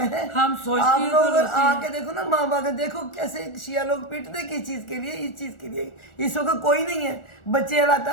ہے. آپ لوگ آ کے دیکھو نا, ماں باپ دیکھو کیسے شیعہ لوگ پیٹتے کس چیز کے لیے, اس چیز کے لیے. اس وقت کوئی نہیں ہے, بچے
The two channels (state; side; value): late; right; 1.4 ms